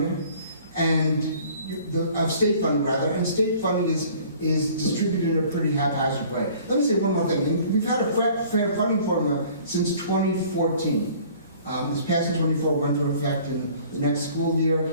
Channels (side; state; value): both; inverted; correlation -0.52